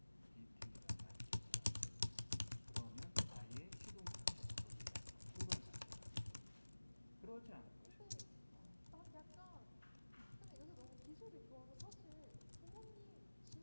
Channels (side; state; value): both; inverted; correlation -1.00